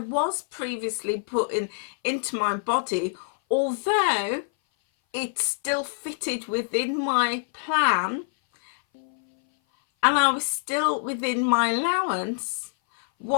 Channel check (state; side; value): silent; right; 58 dB below the other